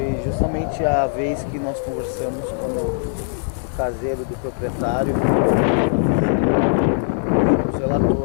justamente a vez que nós conversamos com o caseiro do proprietário. Ele nos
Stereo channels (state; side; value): silent; right; 65 dB below the other